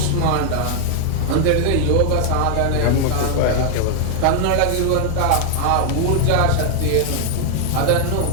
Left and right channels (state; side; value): different; both; correlation 0.00